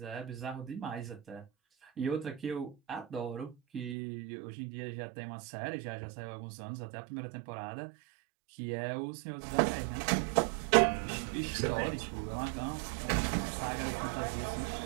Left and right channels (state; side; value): drops out; left; at 4.0 s